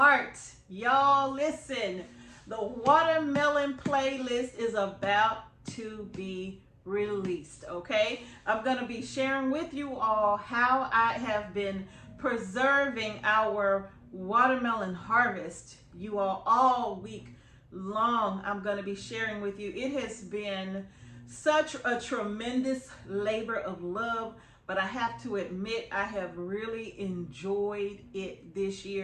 Y'all listen, the watermelon playlist is about to be released, okay? I'm going to be sharing with you all how I have been preserving our watermelon harvest. You all week long, I'm going to be sharing with you. It has been such a tremendous labor of love. But I have to admit, I have really enjoyed it this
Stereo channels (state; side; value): identical; both; correlation 1.00